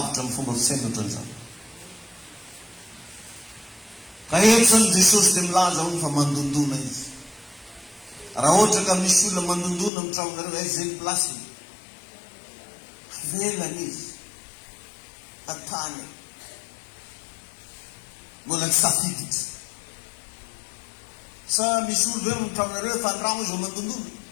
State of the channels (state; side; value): drops out; right; at 9.9 s